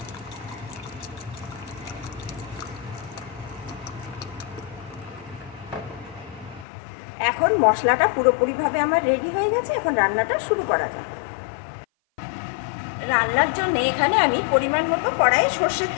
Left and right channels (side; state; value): right; drops out; at 6.7 s